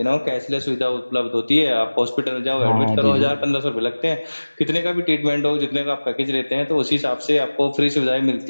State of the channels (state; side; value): inverted; both; correlation -1.00